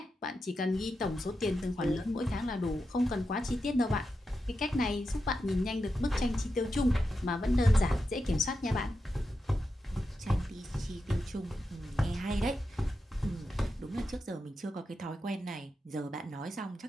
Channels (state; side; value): normal; both; correlation 0.88